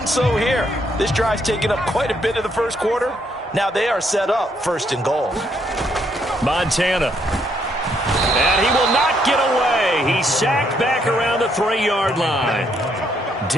so here. This drive's taken up quite a bit of the first quarter. Now they are set up 1st and goal. Montana. And he will not get away. He's sacked back around the 3-yard line.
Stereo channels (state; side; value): normal; both; correlation 0.72